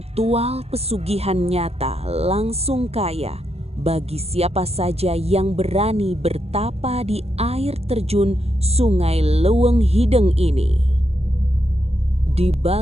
pesugihan nyata langsung kaya bagi siapa saja yang berani bertapa di air terjun Sungai Leuweung Hideng ini. Di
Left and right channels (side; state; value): left; late; 0.30 ms